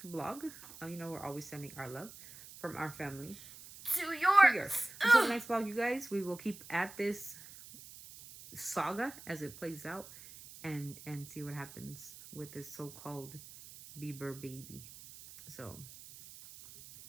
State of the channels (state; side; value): noise; right; hiss, 16 dB below the sound